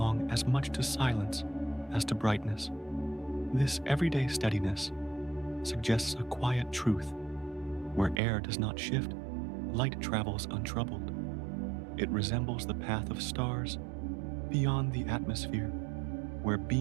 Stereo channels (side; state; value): left; drops out; at 8.2 s